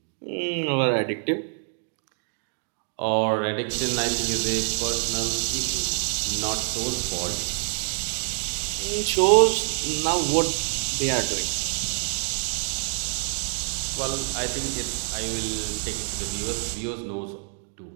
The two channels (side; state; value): left; silent; digital silence